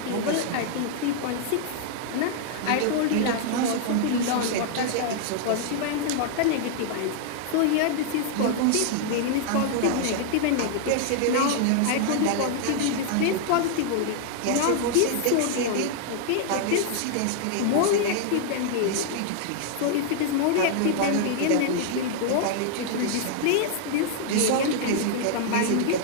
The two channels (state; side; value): different; both; correlation -0.01